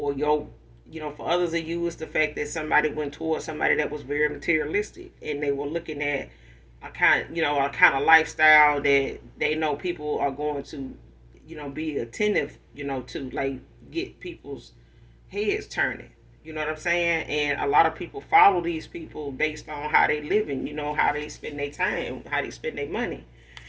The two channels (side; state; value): both; identical; correlation 1.00